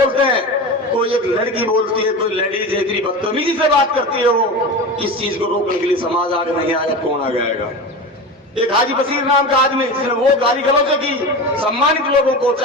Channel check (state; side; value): normal; both; correlation 0.28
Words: हैं, कोई एक लड़की बोलती है, कोई लेडीज इतनी बदतमीजी से बात करती है, वो इस चीज को रोकने के लिए समाज आगे नहीं आएगा, कौन आगे आएगा? एक हाजी बशीर नाम का आदमी जिसने वो गाली गलौज की सम्मानित लोगों को,